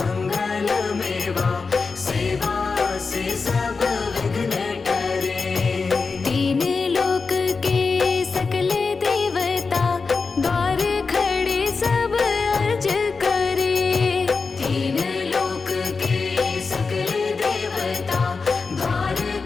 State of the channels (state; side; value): quieter; right; 4.6 dB